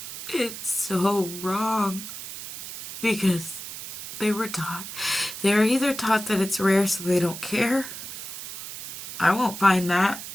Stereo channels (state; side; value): noise; right; hiss, 10 dB below the sound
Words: It's so wrong, because they were either taught that it's rare so they don't care. I won't find that